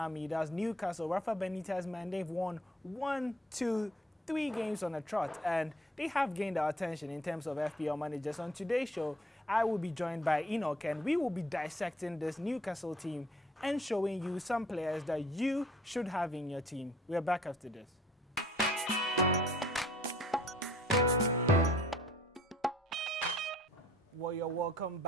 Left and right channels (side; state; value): both; normal; correlation 0.58